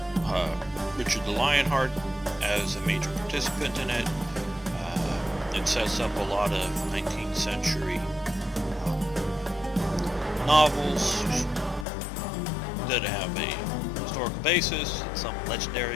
Richard the Lionheart as a major participant in it. It sets up a lot of 19th century novels that have a historical basis, some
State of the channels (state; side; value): drops out; right; at 11.9 s